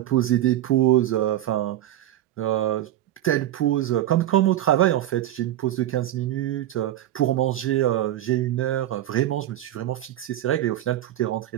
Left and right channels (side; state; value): left; quieter; 13.2 dB